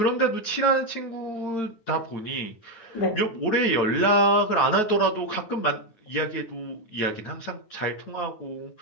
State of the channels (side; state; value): right; late; 9.4 ms